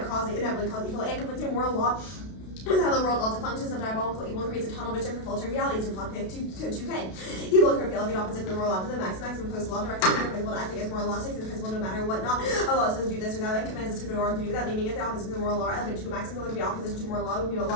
cause inevitably cause evil and conflicting moral law. With how the world also functions, the diabolical evil creates a tunnel vision for filtering realities in plot 2K. Evil occur feeling the opposite of the moral law to the maximum post law directs the principle to act against moral law, sticks to the principle no matter what not. A law says do this or that and commands us to do or to do that, naming it the opposite of the moral law. Element 2 maximum would be opposition to moral law would be a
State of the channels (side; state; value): right; late; 32 ms